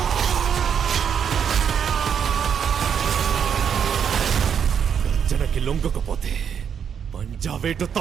గర్జనకి లొంగకపోతే పంజావేటు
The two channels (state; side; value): quieter; left; 7.7 dB